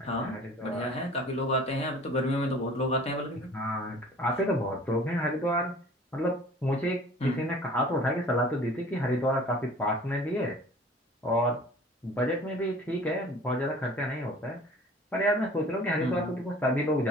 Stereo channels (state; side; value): normal; both; correlation 0.47